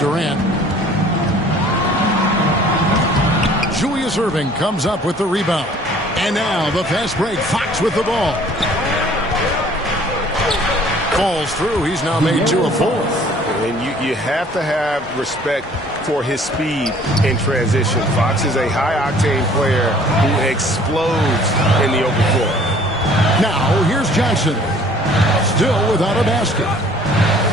Julius Irving comes up with the rebound. And now the fast break. Fox with the ball. Falls through. He's now made 2 of 4. And you have to have respect for his speed in transition. Fox is a high-octane player who explodes in the open floor. Now here's Johnson. Still without a basket.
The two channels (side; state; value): both; normal; correlation 0.54